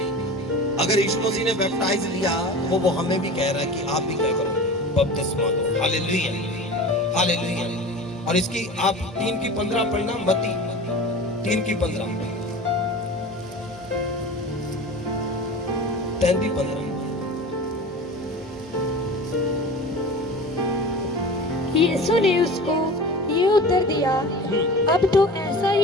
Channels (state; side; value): normal; both; correlation 0.35